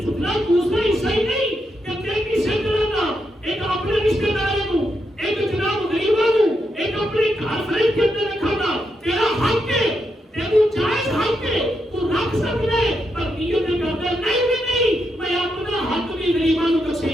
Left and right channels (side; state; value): both; normal; correlation 0.82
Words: اتنا دوسرا حصہ ہی نہیں کہ تیری سے کرنا ایک اپنے رشتے داروں کو ایک جناب غریبوں کو ایک اپنے گھر فرید کے اندر رکھنا تیرا حق ہے تیرا جائز حق ہے تو رکھ سکتا ہے پر نیت کرتا نہیں بھی نہیں میں اپنا حق بھی غریبوں کو